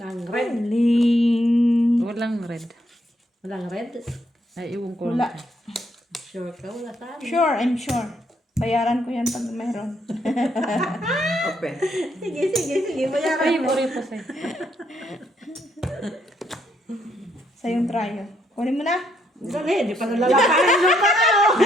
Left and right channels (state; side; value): normal; both; correlation 0.73